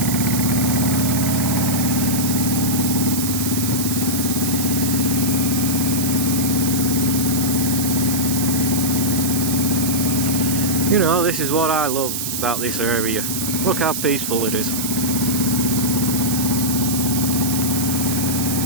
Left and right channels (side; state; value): right; noise; hiss, 2 dB below the sound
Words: You know, this is what I love about this area. Look how peaceful it is.